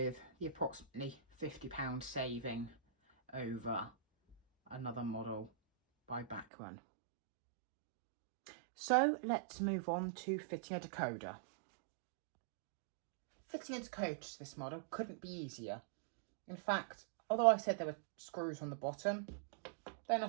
the approximately £50 saving over another model by Bachmann. So let's move on to fitting a decoder. Fitting a decoder to this model couldn't be easier. In fact, although I said there were screws on the bottom, they're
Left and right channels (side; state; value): left; drops out; at 6.5 s